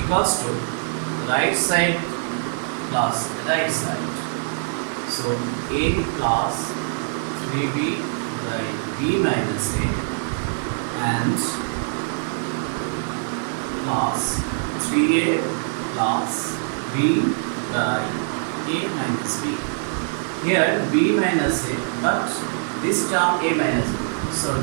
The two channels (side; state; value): left; silent; digital silence